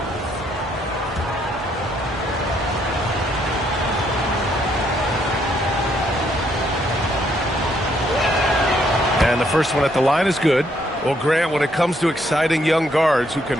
And the first one at the line is good. Well, Grant, when it comes to exciting young guards who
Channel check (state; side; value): normal; both; correlation 0.71